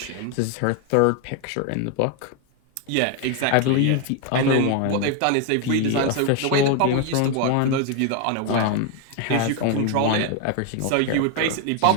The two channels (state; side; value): different; both; correlation 0.01